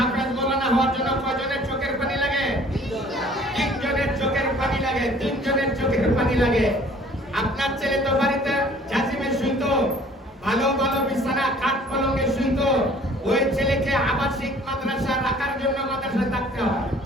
মৌলানা হওয়ার জন্য কয়জনের চোখের পানি লাগে? 3 জনের চোখের পানি লাগে। 3 জনের চোখের পানি লাগে। আপনার ছেলে তো বাড়িতে জাজিমে শুইতো, ভালো ভালো বিছানা কাঠ পলঙ্গে শুইতো। ওই ছেলেকে আবাসিক মাদ্রাসা রাখার জন্য মাদ্রাসায় থাকতে হয়,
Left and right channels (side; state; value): both; normal; correlation 0.53